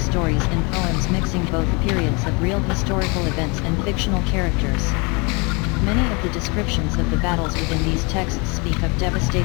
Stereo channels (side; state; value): right; quieter; 30.0 dB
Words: and poems mixing both periods of real historical events and fictional characters. Many of the descriptions of the battles within these texts speak of